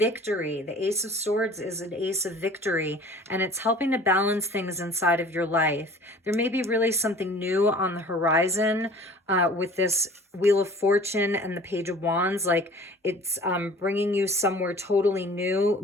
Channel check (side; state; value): both; normal; correlation 0.47